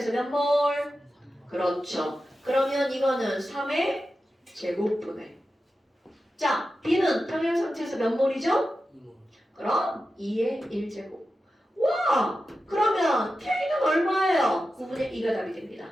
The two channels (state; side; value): normal; both; correlation 0.92